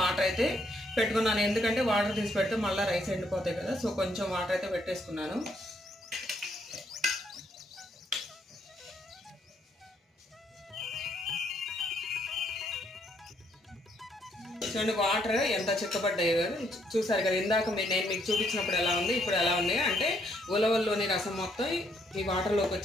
అయితే పెట్టుకున్నాను. ఎందుకంటే వాటర్ తీసి పెడితే మళ్ళీ రైస్ ఎండిపోతాయి కదా, సో కొంచెం వాటర్ అయితే పెట్టేసుకున్నాను. చూడండి వాటర్ ఎంత చిక్కబడ్డాయో చూసారు కదా. ఇందాక నేను మీకు చూపించినప్పుడు ఎలా ఉంది, ఇప్పుడు ఎలా ఉంది అంటే ఉలవల్లోని రసం మొత్తం ఈ వాటర్లోకి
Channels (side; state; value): both; normal; correlation 0.72